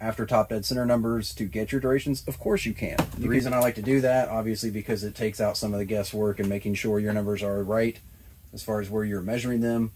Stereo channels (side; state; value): both; identical; correlation 1.00